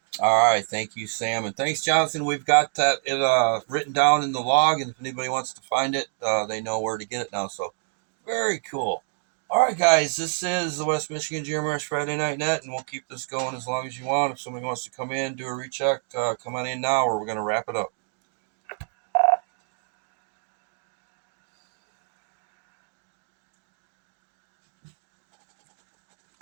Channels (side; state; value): left; silent; 60 dB below the other